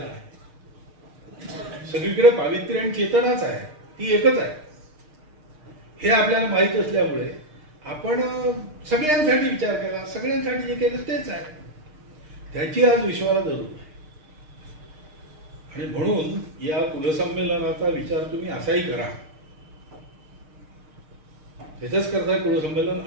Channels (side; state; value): left; late; 6.5 ms